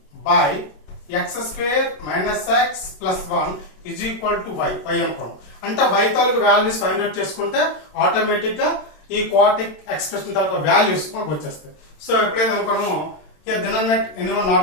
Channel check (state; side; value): late; right; 27 ms